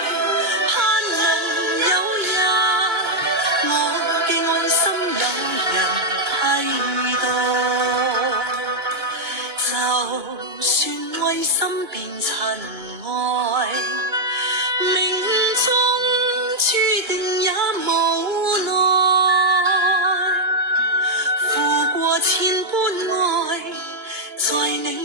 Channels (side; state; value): left; late; 2.9 ms